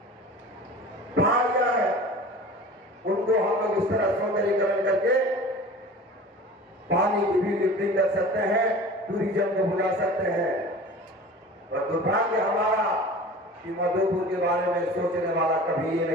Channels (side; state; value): both; normal; correlation 0.39